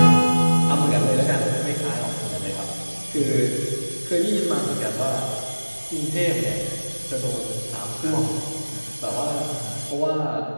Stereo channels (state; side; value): inverted; both; correlation -1.00